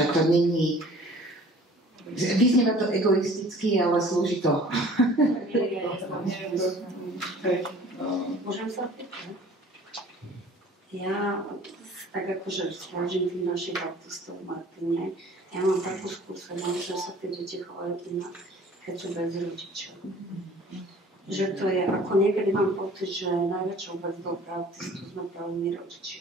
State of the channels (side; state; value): both; normal; correlation 0.49